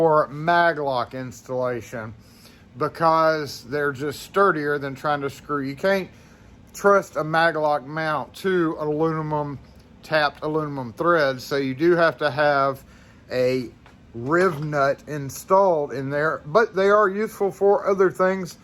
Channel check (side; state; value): both; identical; correlation 1.00